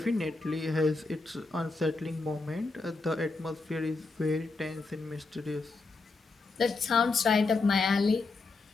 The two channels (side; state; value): right; quieter; 3.7 dB